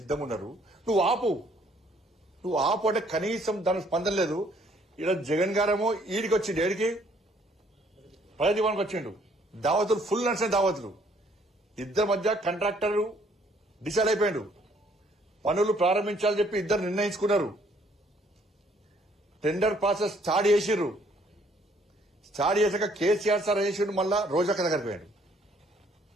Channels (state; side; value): normal; both; correlation 0.64